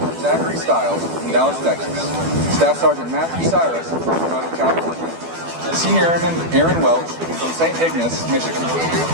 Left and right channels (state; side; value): late; left; 12 ms